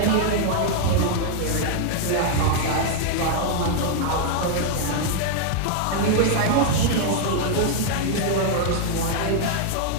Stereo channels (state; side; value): different; both; correlation 0.00